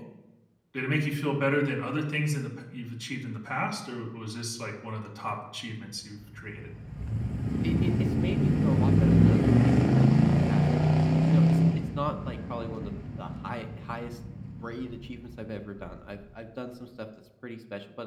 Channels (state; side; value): identical; both; correlation 1.00